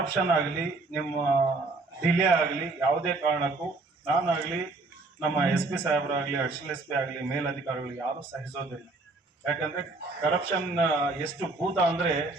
ಆಗಲಿ, ನಿಮ್ಮ ಡಿಲೇ ಆಗಲಿ, ಯಾವುದೇ ಕಾರಣಕ್ಕೂ ನಾನಾಗಲಿ, ನಮ್ಮ SP ಸಾಹೇಬರಾಗಲಿ, ಅಡಿಷನಲ್ SP ಆಗಲಿ, ಮೇಲಧಿಕಾರಿಗಳು ಯಾರು ಸಹಿಸೋದಿಲ್ಲ. ಯಾಕಂದ್ರೆ ಕರಪ್ಷನ್ ಎಷ್ಟು ಭೂತ ಅಂದ್ರೆ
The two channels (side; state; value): left; quieter; 3.4 dB